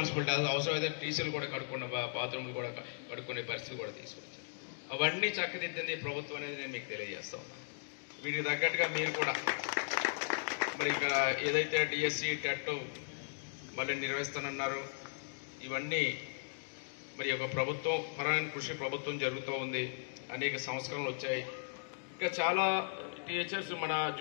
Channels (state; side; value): silent; right; digital silence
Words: అవసరమైతే టీచర్లు కూడా కడుక్కున్న బాత్రూమ్లు కూడా కడుక్కునే పరిస్థితి కూడా తీసుకొచ్చారు. అవన్నీ చక్కదిద్దింది ప్రభుత్వం అనేది నేను మీకు తెలియజేస్తా ఉన్నాను. వీటికి తగ్గట్టుగా మీరు కూడా మరి ఇక్కడ ఏదైతే డిఎస్సి టెట్ మళ్ళీ నిర్వహిస్తానన్నారు, ఇవన్నీ మరి ఒక ప్రభుత్వం పరమైన కృషి ప్రభుత్వం జరుగుతూ ఉంది. అనేక సంస్కరణలు వచ్చాయి. ఇంకా చాలా టీచర్స్ మన